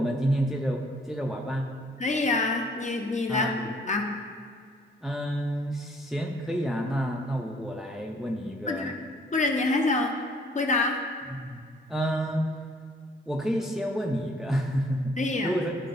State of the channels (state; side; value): normal; both; correlation 0.61